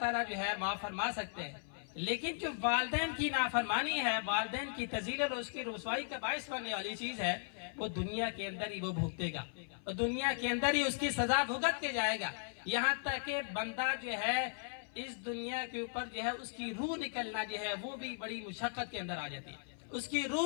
तआला जो है माफ फरमा सकते हैं, लेकिन जो वालिदैन की नाफरमानी है, वालिदैन की तज़ील और उसकी रुसवाई का बाइस बनने वाली चीज है, वो दुनिया के अंदर ही वो भुगतेगा और दुनिया के अंदर ही उसकी सजा भुगत के जाएगा। यहाँ तक कि बंदा जो है इस दुनिया के ऊपर जो है उसकी रूह निकलना जो है वो भी बड़ी मुशक्कत के अंदर आ जाती है, उसकी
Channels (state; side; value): silent; right; 53 dB below the other